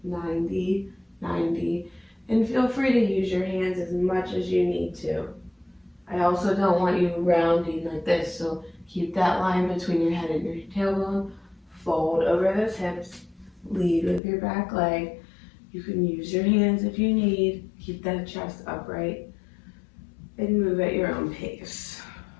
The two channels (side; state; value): right; drops out; at 14.2 s